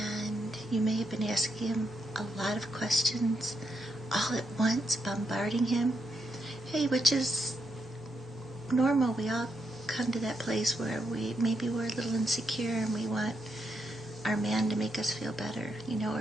you may have been asking him a lot of questions all at once, bombarding him. Hey, which is normal. We all come to that place where maybe we're a little insecure and we want our man to make us feel better, or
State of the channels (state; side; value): normal; both; correlation 0.81